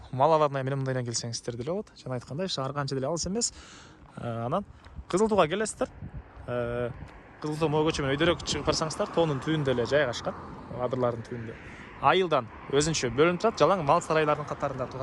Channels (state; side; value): identical; both; correlation 1.00